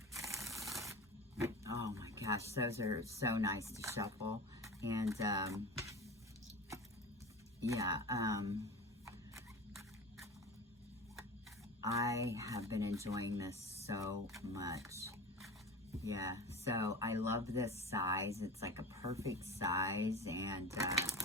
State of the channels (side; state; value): both; normal; correlation 0.31